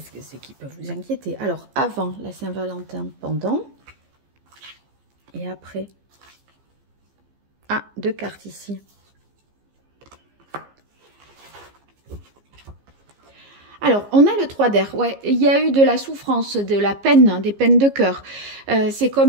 que c'est qui peut vous inquiéter. Alors, avant la Saint-Valentin, pendant. Et après. Ah, 2 cartes ici. Alors, on a le 3 d'air. Ouais, il y a eu de la souffrance, de la peine, hein, des peines de cœur. C'est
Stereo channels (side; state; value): left; late; 15 ms